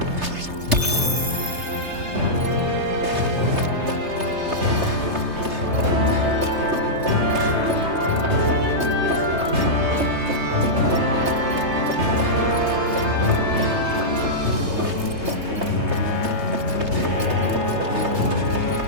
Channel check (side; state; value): left; late; 3.3 ms